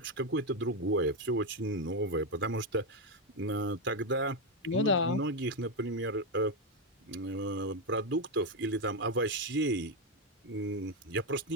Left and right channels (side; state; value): both; normal; correlation 0.06